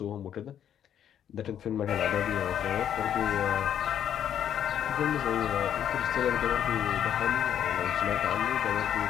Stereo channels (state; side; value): quieter; right; 9.7 dB